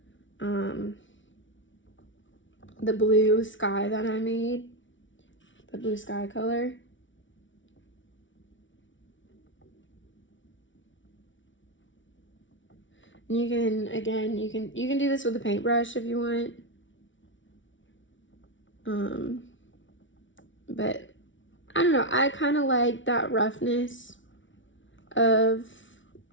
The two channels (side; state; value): right; late; 0.56 ms